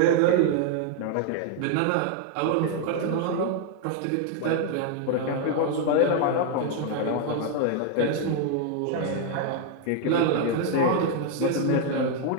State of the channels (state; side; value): different; both; correlation 0.00